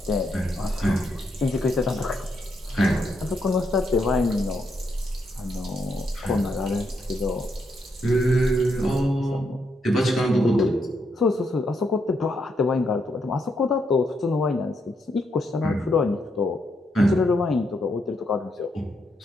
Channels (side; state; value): both; normal; correlation 0.79